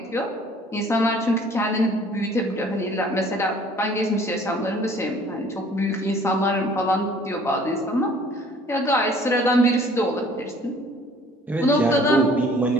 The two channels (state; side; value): normal; both; correlation 0.54